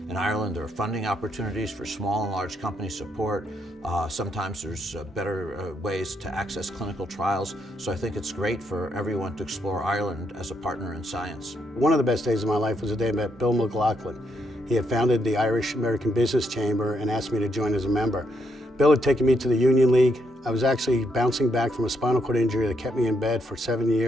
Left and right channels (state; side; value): normal; both; correlation 0.77